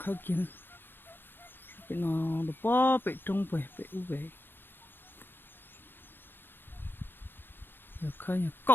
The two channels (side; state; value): right; late; 0.10 ms